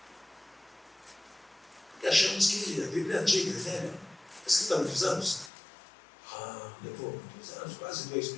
Porque achamos que a Bíblia é antiga, é velha, escrita há muitos anos. Levou muitos anos, quase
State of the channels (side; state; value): right; drops out; at 5.5 s